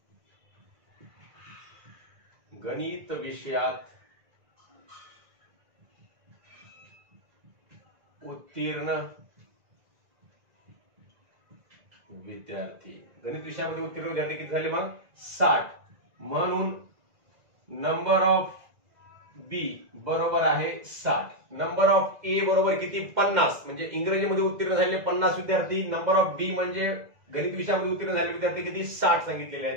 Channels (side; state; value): left; late; 2.0 ms